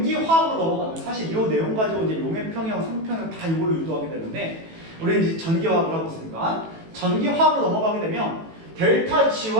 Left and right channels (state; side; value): late; left; 18 ms